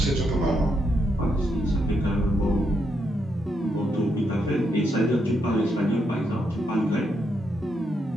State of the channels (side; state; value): both; normal; correlation 0.79